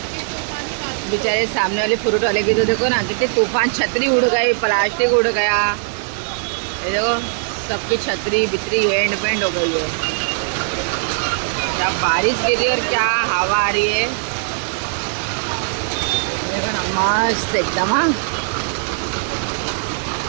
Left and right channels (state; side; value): silent; left; 66 dB below the other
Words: बेचारे सामने वाले फ्रूट वाले की तो देखो ना कितने तूफान छतरी उड़ गई प्लास्टिक उड़ गया ये देखो सबकी छतरी बितरी एंड पेंड हो गई है क्या बारिश गिरी और क्या हवा आ रही है देखो ना मस्त एकदम हाँ